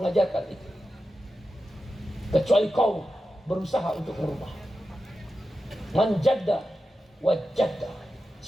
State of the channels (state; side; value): normal; both; correlation 0.91